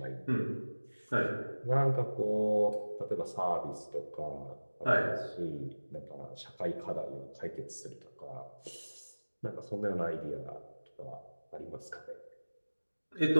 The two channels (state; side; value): inverted; both; correlation -1.00